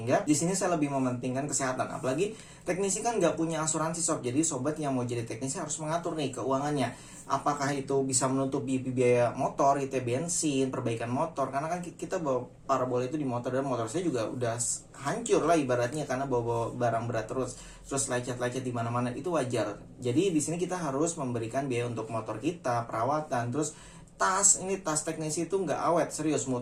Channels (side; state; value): both; identical; correlation 1.00